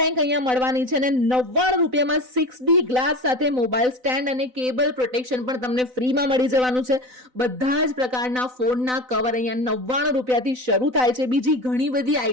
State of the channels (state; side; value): late; left; 4.0 ms